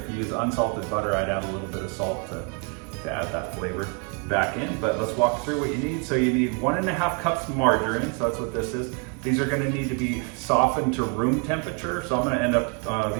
you use unsalted butter, I'd add a little bit of salt to add that flavor back in. But let's walk through what you need. So you need 1.5 cups margarine, so that's what this is. These are gonna need to be softened to room temperature. So I'm gonna end up,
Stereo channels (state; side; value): quieter; left; 35.7 dB